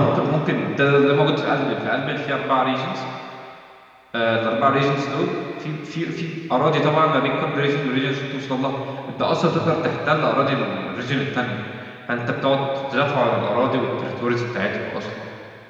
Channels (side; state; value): both; identical; correlation 1.00